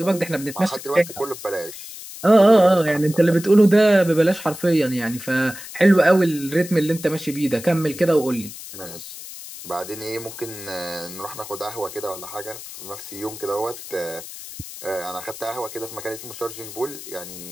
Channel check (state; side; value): noise; left; hiss, 13 dB below the sound